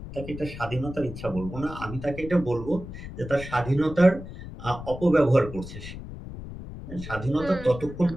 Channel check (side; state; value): left; noise; rumble, 11 dB below the sound